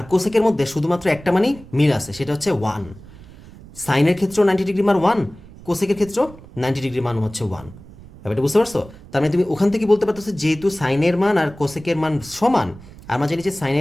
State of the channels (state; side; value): noise; right; rumble, 19 dB below the sound